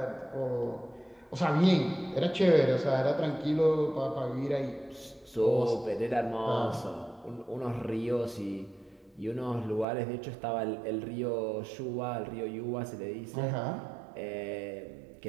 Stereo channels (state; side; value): drops out; left; at 9.9 s